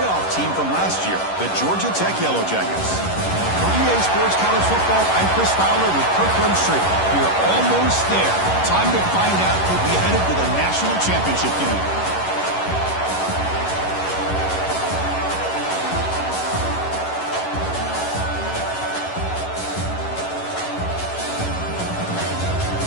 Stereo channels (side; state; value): right; late; 11 ms